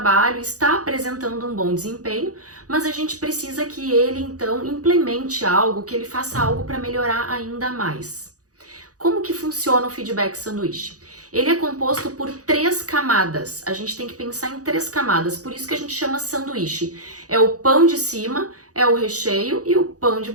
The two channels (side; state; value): left; late; 0.67 ms